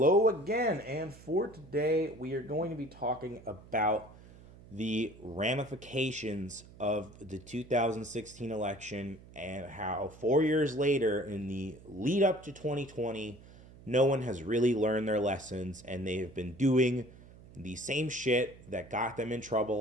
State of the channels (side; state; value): right; noise; hum, 21 dB below the sound